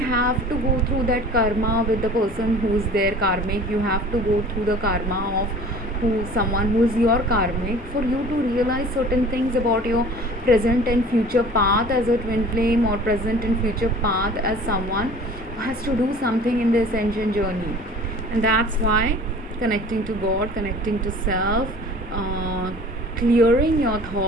to go through that karma with the person who's their karmic. You have to go through the karma of someone who is your karmic for you to realize certain things about your present and future path as a twin flame, or present and future path as someone who has to do something in the ascension journey. And that's why connecting to God, connecting to self, clearing your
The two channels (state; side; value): normal; both; correlation 0.45